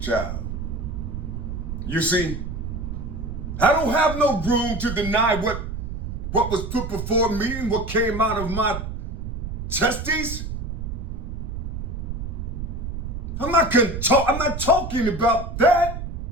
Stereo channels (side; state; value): right; noise; rumble, 5 dB below the sound